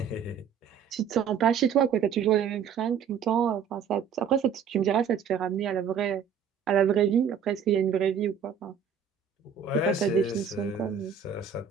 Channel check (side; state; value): left; quieter; 7.3 dB